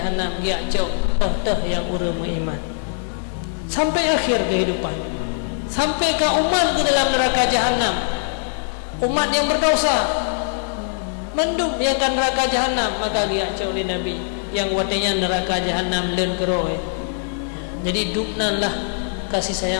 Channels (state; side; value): silent; right; 65 dB below the other